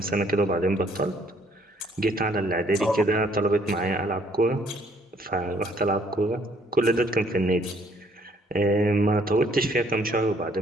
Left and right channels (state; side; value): normal; both; correlation 0.64